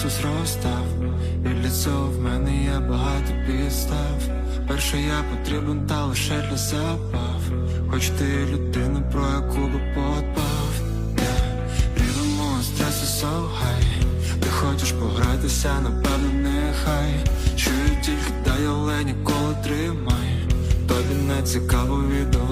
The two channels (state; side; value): identical; both; correlation 1.00